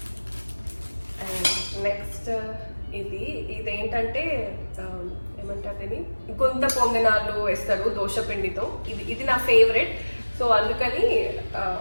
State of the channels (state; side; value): inverted; both; correlation -1.00